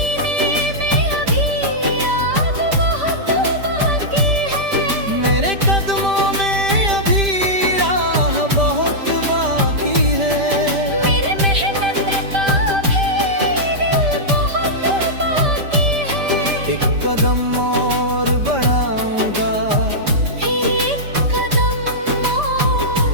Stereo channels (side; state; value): left; late; 5.1 ms